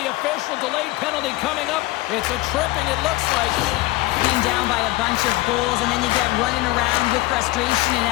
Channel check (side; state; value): right; quieter; 19.2 dB